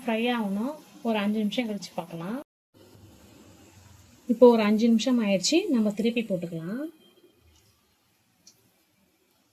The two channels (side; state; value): both; identical; correlation 1.00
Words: ஆகணும். ஒரு 5 நிமிஷம் கழிச்சு பார்க்கலாம். இப்போ ஒரு 5 நிமிஷம் ஆயிடுச்சு. நம்ம திருப்பி போட்டுக்கலாம்.